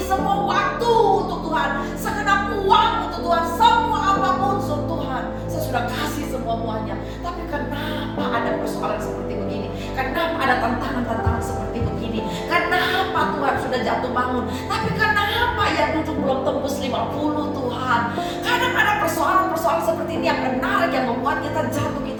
semua waktu untuk Tuhan, segenap uang untuk Tuhan, semua apapun untuk Tuhan, saya sudah kasih semuanya. Tapi kenapa ada persoalan seperti begini? Kenapa ada tantangan-tantangan seperti begini? Kenapa Tuhan sudah jatuh bangun, tapi kenapa yang duduk belum tembus 50 Tuhan? Kadang ada persoalan-persoalan seperti ini yang menarik, yang membuat kita jatuh,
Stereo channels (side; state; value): both; identical; correlation 1.00